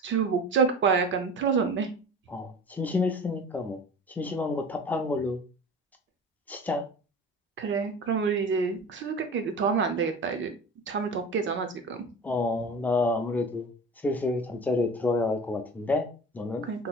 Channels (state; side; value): normal; both; correlation 0.36